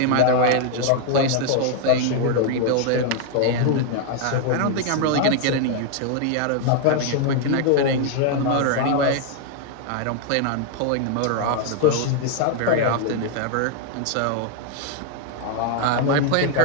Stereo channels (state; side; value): different; both; correlation 0.00